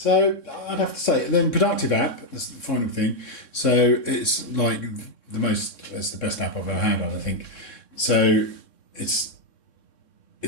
I'd have to say, then Productive app, that's the final thing. So it's like it's the best app I've ever had on, I think. So it's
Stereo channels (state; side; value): late; right; 3.6 ms